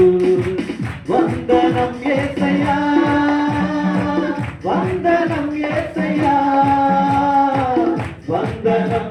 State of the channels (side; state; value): both; identical; correlation 1.00